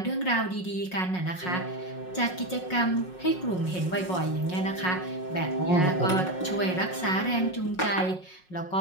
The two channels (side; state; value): right; late; 5.5 ms